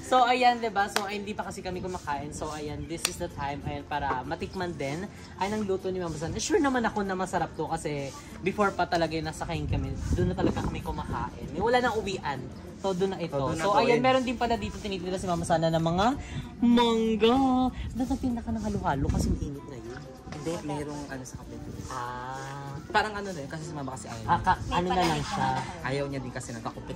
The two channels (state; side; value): identical; both; correlation 1.00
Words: So, ayan, diba? So, ay, hindi pa kasi kami kumakain. So, ayan, this is the time, ayan, para matikman din. Ay, nang luto ni Mama San. Sure naman ako na masarap to kasi before pa talaga yung nasa kain kami, doon na talaga kami kumakain. Wala nang uwian. So, doon na ito. So, ayan, meron din pala dito tinitira si Mama Sana ng mga mangga. Nagpinda ka ng halo-halo kasi mainit na yun. Hindi, mayroong ano sa kapit. Parang ano na yun, kasi si Mama kasi ayaw. Ano na lang siya. Ayaw niya din kasi nagkakupit